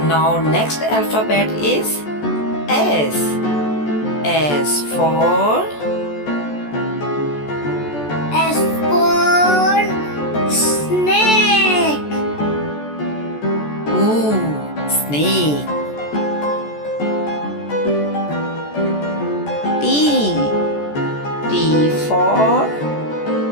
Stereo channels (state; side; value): late; right; 14 ms